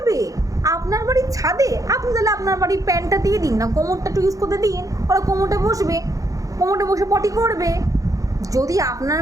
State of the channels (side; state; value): left; late; 0.16 ms